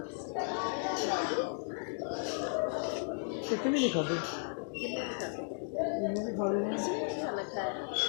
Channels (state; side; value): silent; right; 55 dB below the other